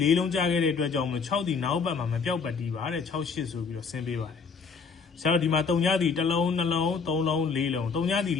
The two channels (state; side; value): quieter; right; 5.3 dB